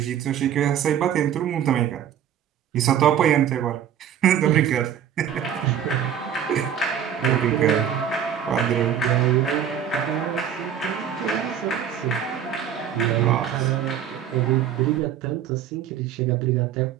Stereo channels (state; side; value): quieter; left; 9.2 dB